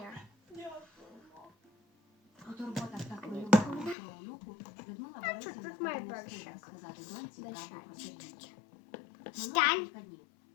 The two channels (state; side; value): drops out; right; at 4.0 s